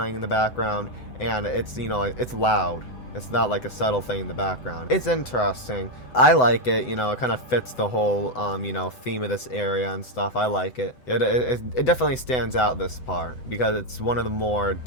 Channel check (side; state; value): right; late; 7.9 ms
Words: in the background, and it's, you know, like, it's loud. It's not like a subtle thing in the background. It's interesting. I like it, you know, it kind of fits the whole, you know, theme of this area and stuff. I like it. It definitely stands out, this part, because it's one of the more